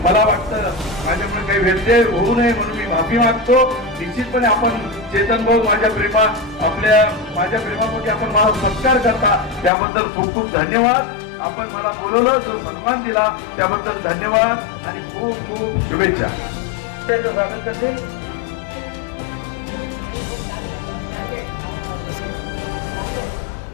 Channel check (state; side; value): drops out; right; at 9.7 s